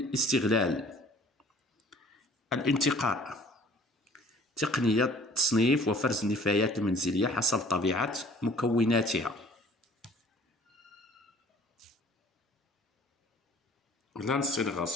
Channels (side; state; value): both; normal; correlation 0.52